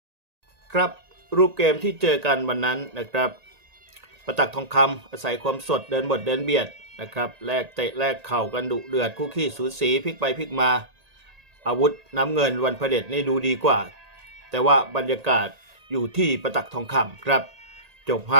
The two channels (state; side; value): late; left; 1.8 ms